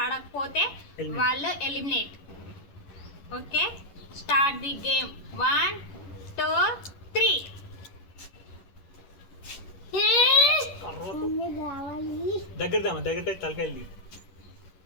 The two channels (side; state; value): right; late; 11 ms